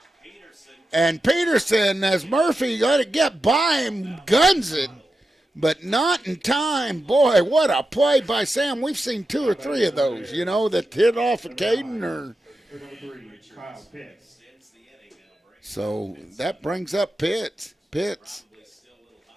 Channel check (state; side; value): normal; both; correlation 0.90